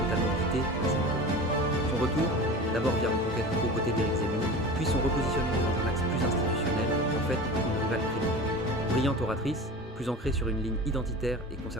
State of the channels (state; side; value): normal; both; correlation 0.34